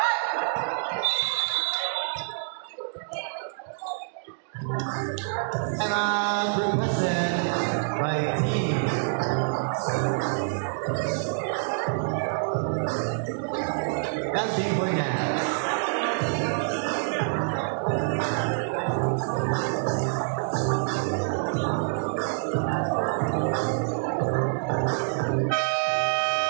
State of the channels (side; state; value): left; silent; digital silence